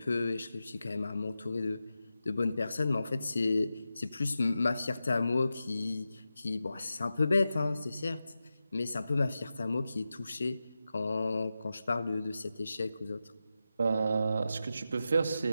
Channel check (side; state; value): both; inverted; correlation -0.91